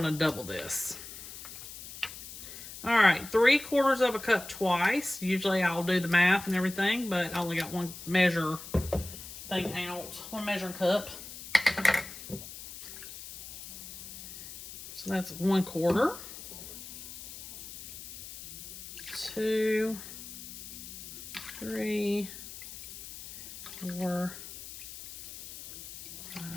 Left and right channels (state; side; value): noise; left; hiss, 12 dB below the sound